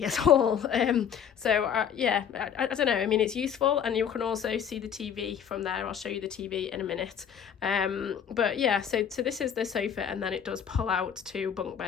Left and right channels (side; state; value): right; quieter; 8.3 dB